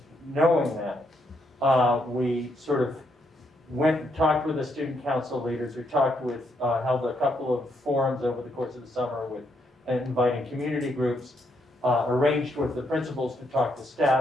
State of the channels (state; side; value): normal; both; correlation 0.76